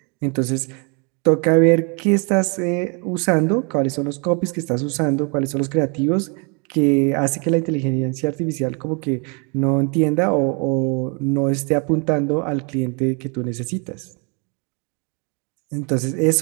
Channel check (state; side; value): quieter; left; 34.3 dB